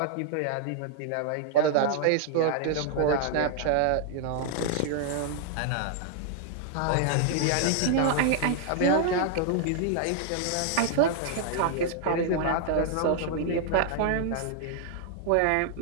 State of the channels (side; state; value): both; different; correlation 0.00